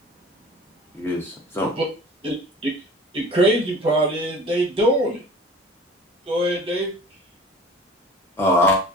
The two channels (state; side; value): normal; both; correlation 0.43